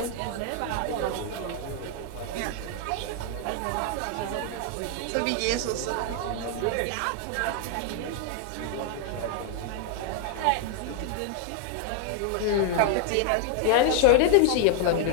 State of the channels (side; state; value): both; different; correlation 0.00